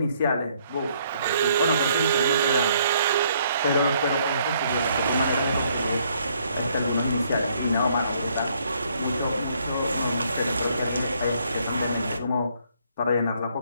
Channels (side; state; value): both; inverted; correlation -0.68